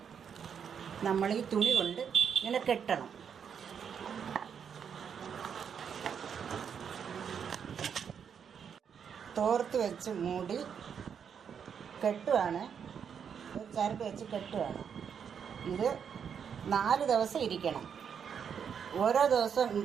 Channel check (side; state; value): left; quieter; 7.4 dB